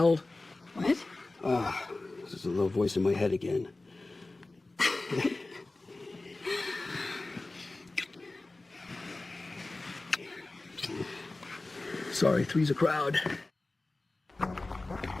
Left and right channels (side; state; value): right; quieter; 3.1 dB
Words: What? This is a little voice in my head again. Sorry, three's a crowd.